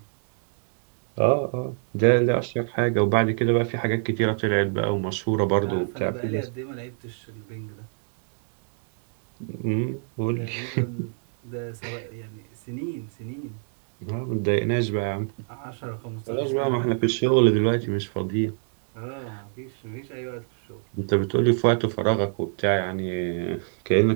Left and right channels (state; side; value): silent; left; 61 dB below the other